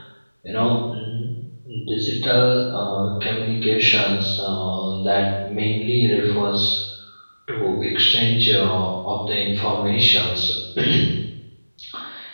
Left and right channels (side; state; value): both; inverted; correlation -1.00